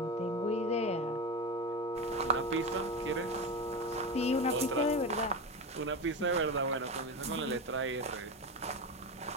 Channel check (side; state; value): both; normal; correlation 0.21